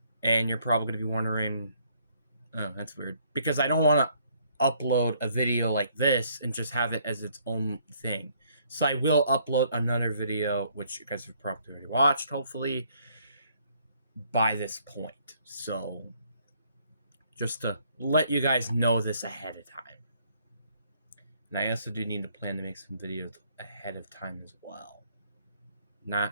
And you're probably going to be wondering, oh, that's weird. Because I don't want to upload a video like this and just have it as its own thing. So I will upload another video, which you guys have probably already watched, hopefully, by this point. So just to let you guys know this ahead of time. And I also do need to plan to make some videos ahead of time as well.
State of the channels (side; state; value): both; inverted; correlation -0.65